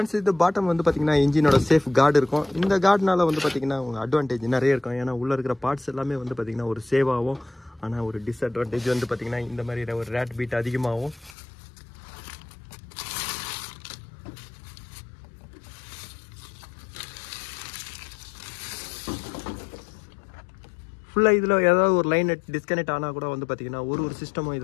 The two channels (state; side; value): drops out; right; at 11.4 s